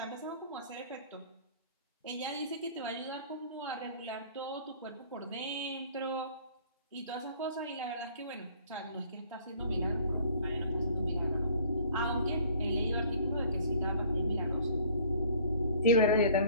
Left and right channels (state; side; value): inverted; both; correlation -0.54